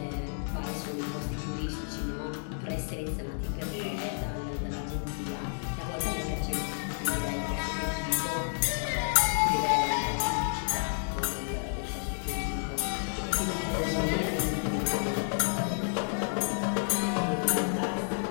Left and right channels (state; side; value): silent; right; 57 dB below the other